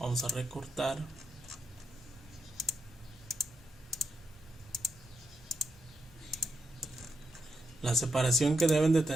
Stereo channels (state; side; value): normal; both; correlation 0.84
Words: a recortar. La separación que deben de